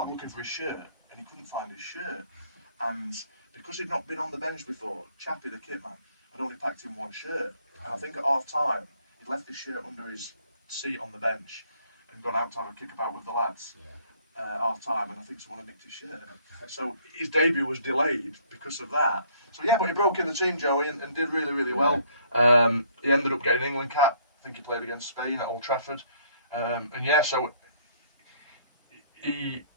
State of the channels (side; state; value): both; inverted; correlation -0.62